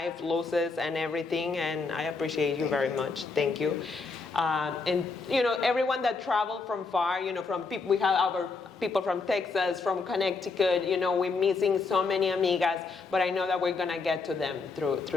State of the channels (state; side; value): quieter; right; 4.2 dB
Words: losses and everything, and I appreciate you very much. Thank you. And everyone that traveled from far, from people, we have our people from Texas, from Connecticut, we're missing so many amigas, but I know that we're gonna get to them